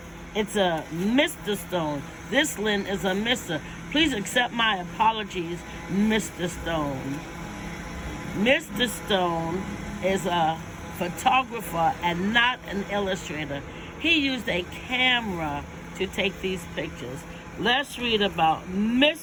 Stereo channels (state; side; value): identical; both; correlation 1.00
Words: It's a Mr. Stone. This Lynn is a Mr. Please accept my apologies, Mr. Stone. Mr. Stone is a photographer and not an illustrator. He used a camera to take these pictures. Let's read about